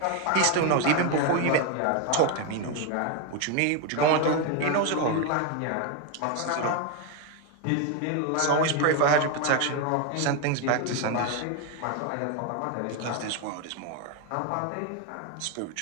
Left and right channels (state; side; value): different; both; correlation 0.02